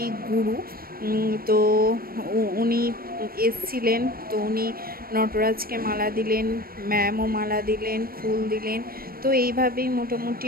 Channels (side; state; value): left; late; 0.43 ms